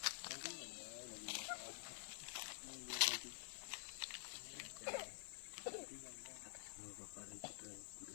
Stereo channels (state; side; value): silent; right; digital silence